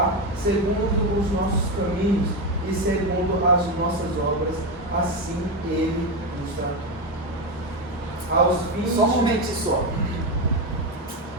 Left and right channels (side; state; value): both; normal; correlation 0.12